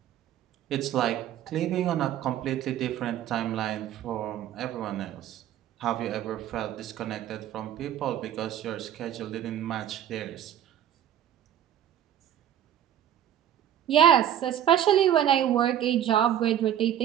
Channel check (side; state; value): left; quieter; 10.8 dB